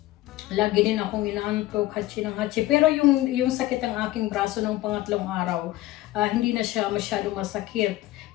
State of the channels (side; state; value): right; quieter; 16.7 dB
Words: Lagi din akong inaantok, hatsi ng hatsi. Pero yung sakit ng aking braso ng pangatlong araw, hindi na siya masyado masakit.